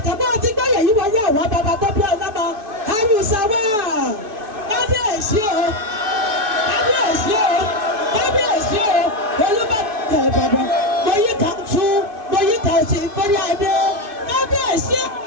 ti gbọ́yẹ̀ yìí wọ́n yá àwọn bàbá tó bí ọlọ́mọ àrùsà wà kábíyèsí o kábíyèsí o kábíyèsí o Olúbàdàn Ìbàdàn mo yí ká tún mo yí ká sí ìfọ́rí adé kábíyèsí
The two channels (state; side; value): late; left; 2.4 ms